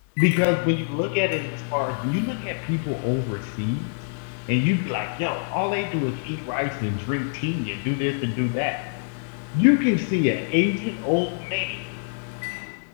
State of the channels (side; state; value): right; silent; 62 dB below the other